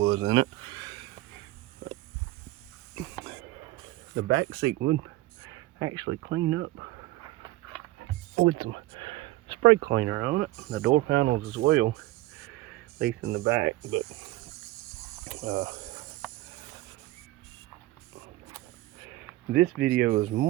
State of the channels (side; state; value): left; quieter; 18.3 dB